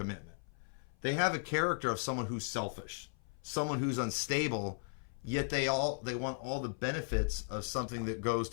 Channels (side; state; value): right; silent; 53 dB below the other